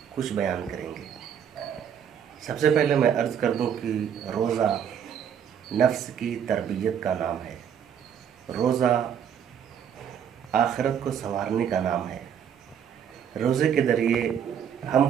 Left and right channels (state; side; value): quieter; left; 8.4 dB